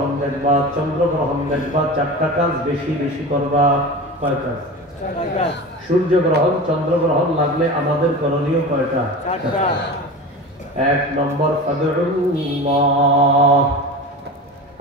দেখবা, চন্দ্র গ্রহণ দেখবা, চারটা কাজ বেশি বেশি করবা। কয় কাজ? সূর্য গ্রহণ, চন্দ্র গ্রহণ লাগলে আমাদের করণীয় কয়টা? এক নম্বর, ফাদউল্লাহ,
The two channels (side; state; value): both; normal; correlation 0.31